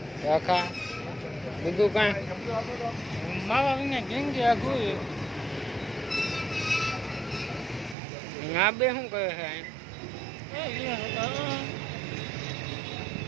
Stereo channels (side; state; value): left; drops out; at 8.0 s